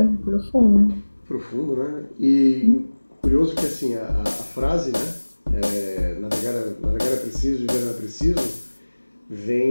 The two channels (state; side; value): inverted; both; correlation -1.00